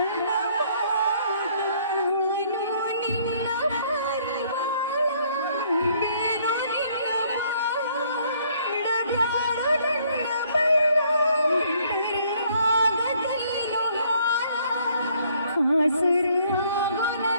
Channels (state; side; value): inverted; both; correlation -0.64